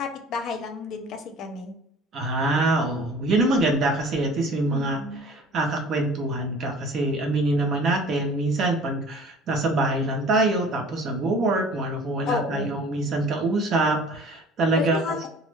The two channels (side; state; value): both; normal; correlation 0.47